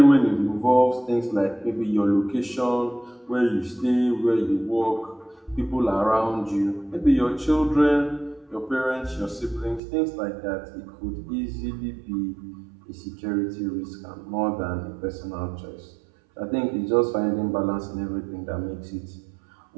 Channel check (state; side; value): drops out; left; at 9.8 s